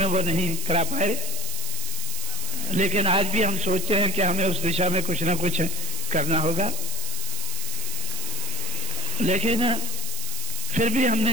वो नहीं करा पाए, लेकिन आज भी हम सोचते हैं कि हमें उस दिशा में कुछ ना कुछ करना होगा। लेकिन फिर भी हमने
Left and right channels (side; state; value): right; noise; hiss, 5 dB below the sound